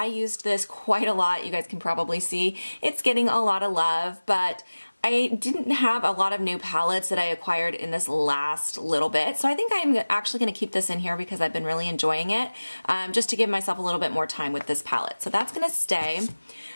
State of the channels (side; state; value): both; inverted; correlation -1.00